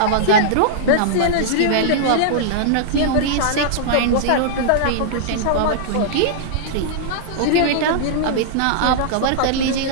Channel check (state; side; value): different; both; correlation -0.02